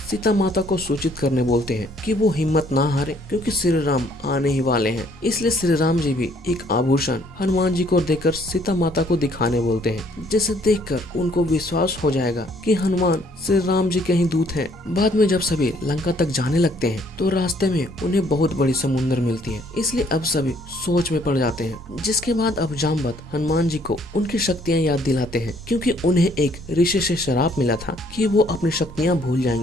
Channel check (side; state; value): both; normal; correlation 0.64